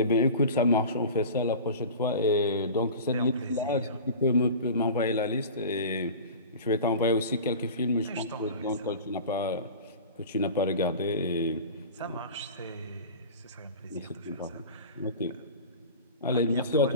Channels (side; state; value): both; inverted; correlation -0.35